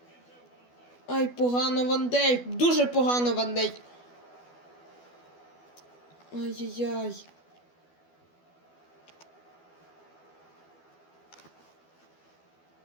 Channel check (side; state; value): right; late; 12 ms